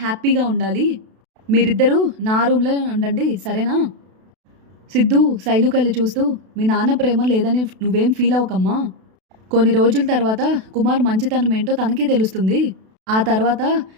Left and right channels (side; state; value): left; late; 32 ms